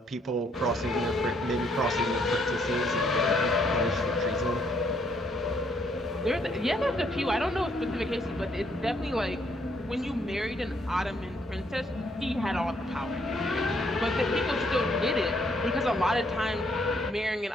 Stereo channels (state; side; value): normal; both; correlation 0.70